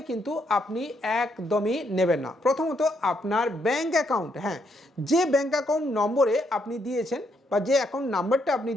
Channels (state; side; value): normal; both; correlation 0.75